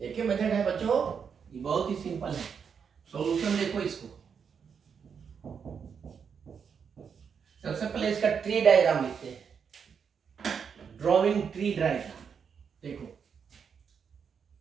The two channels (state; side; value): quieter; left; 6.7 dB